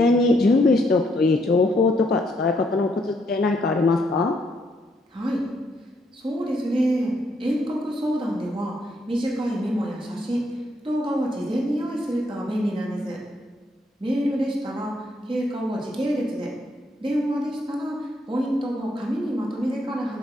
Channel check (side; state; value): both; normal; correlation 0.74